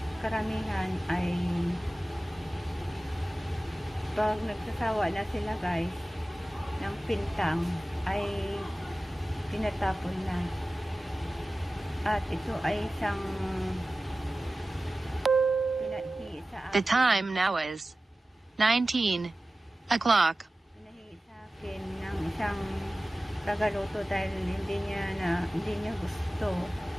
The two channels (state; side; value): normal; both; correlation 0.96